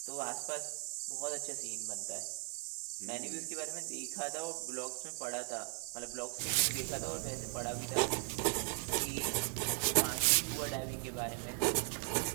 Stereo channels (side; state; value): left; quieter; 36.1 dB